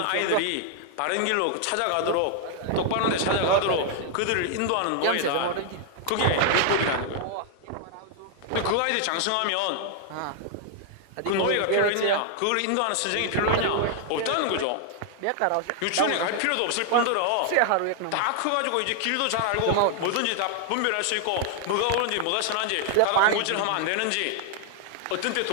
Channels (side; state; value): both; different; correlation 0.00